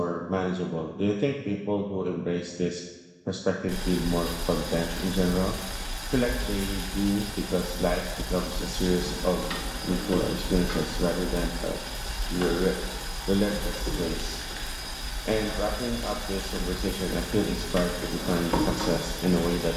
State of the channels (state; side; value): identical; both; correlation 1.00